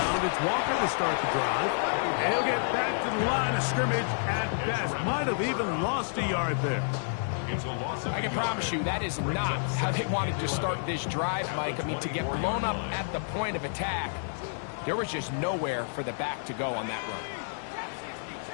it's Walker to start the drive. And he'll get back to the line of scrimmage at best. Might have even lost a yard there. I can promise you that is not how they wanted to start this drive, Mike. I mean, to get blown up at the point of attack, there was just nowhere for the back to go on that run.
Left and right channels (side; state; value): right; silent; 58 dB below the other